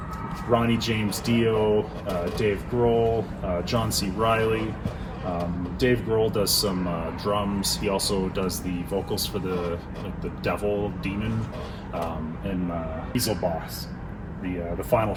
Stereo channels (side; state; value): both; identical; correlation 1.00